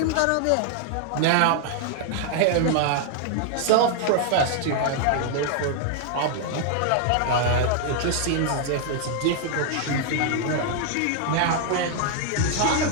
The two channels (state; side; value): different; both; correlation -0.01